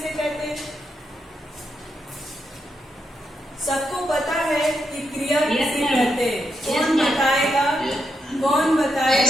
कहते हैं? सबको पता है कि क्रिया किसे कहते हैं? कौन बताएगा? कौन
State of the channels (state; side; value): normal; both; correlation 0.82